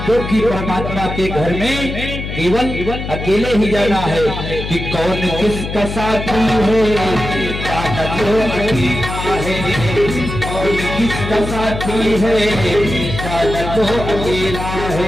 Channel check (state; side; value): noise; left; hum, 6 dB below the sound